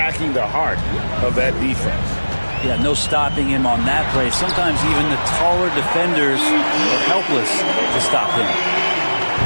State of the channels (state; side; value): inverted; both; correlation -1.00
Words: the heart of that defense. Yeah, no stopping him on that play. Sometimes even the taller defenders are helpless to stop him.